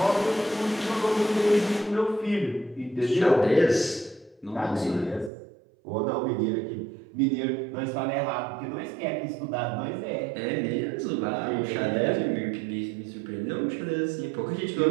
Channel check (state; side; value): drops out; left; at 5.3 s